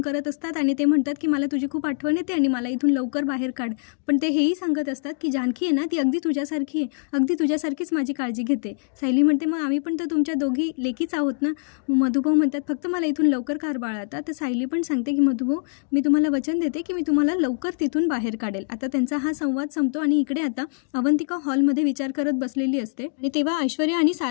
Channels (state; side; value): silent; right; digital silence